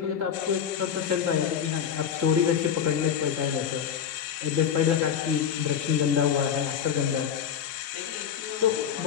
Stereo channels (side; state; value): right; quieter; 8.3 dB